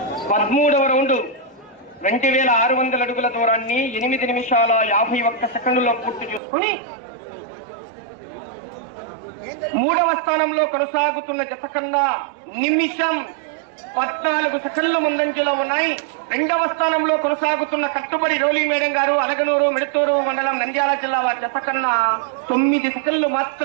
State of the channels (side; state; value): left; drops out; at 6.4 s